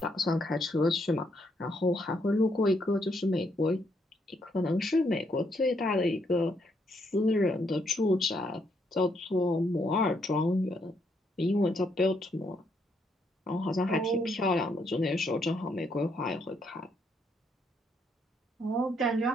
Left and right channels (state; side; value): normal; both; correlation 0.74